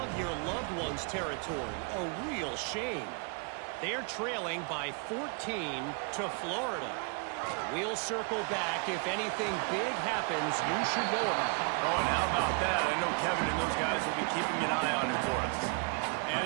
your loved ones territory. A real shame. They're trailing by 14 to Florida. We'll circle back if anything big happens you should know about. Oh, and how about that? I know Kevin and those guys will be keeping an eye on it for us.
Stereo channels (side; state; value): left; quieter; 37.4 dB